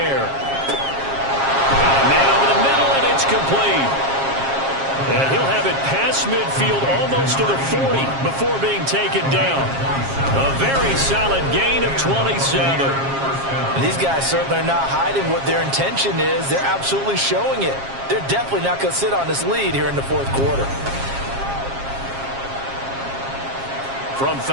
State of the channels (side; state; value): left; late; 7.4 ms